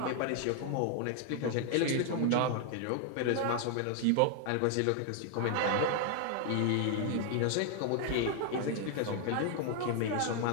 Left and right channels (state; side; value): different; both; correlation 0.00